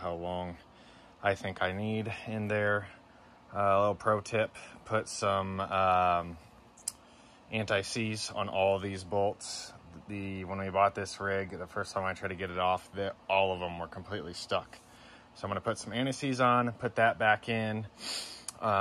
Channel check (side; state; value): both; identical; correlation 1.00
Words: long I think I need in there. A little pro tip, put some anti-seize on all of these bolts. When we bought this rig, the first time I tried to get it off, all of them were completely stuck. So I'm going to put some anti-seize on, put that back in